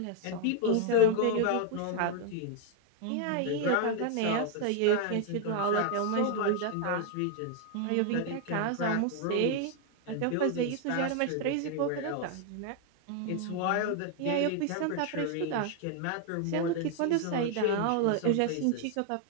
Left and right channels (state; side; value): different; both; correlation 0.00